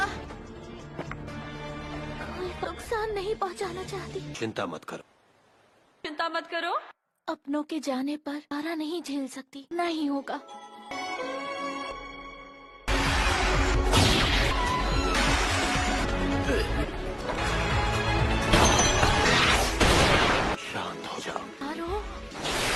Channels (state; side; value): identical; both; correlation 1.00